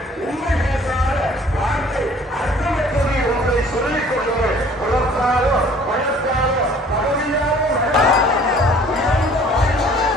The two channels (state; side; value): normal; both; correlation 0.53